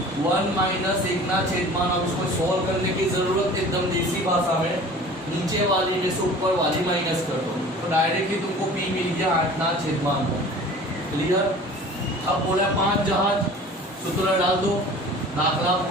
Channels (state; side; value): normal; both; correlation 0.44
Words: 1 माइनस 1/। अब इसको सॉल्व करने की जरूरत एकदम देसी भाषा में नीचे वाली में से ऊपर वाली माइनस कर दो तो डायरेक्टली तुमको p मिल गया 8/9। क्लियर। अब बोला 5 जहाज सूत्र डाल दो दाखला